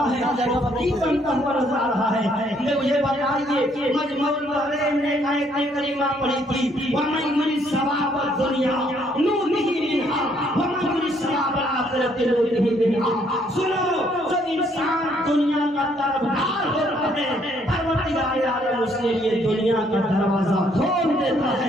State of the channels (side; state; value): both; normal; correlation 0.68